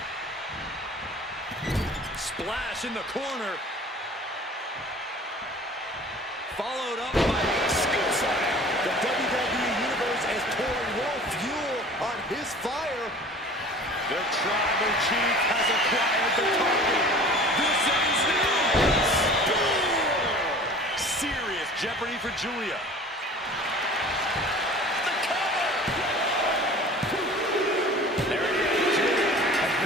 Splash in the corner. Followed up by a scoop slam. The WWE Universe is pouring more fuel on his fire. The Tribal Chief has acquired the target. This ends now. Spear! Serious jeopardy for Julia. The cover. There it is. Julia has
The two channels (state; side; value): normal; both; correlation 0.44